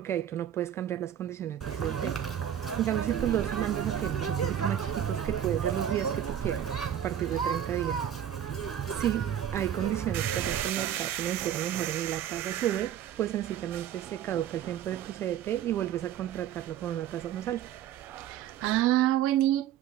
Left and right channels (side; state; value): left; quieter; 10.3 dB